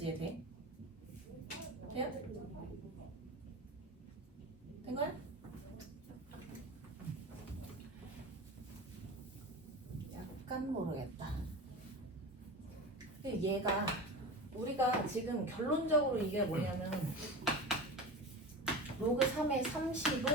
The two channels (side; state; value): both; normal; correlation 0.30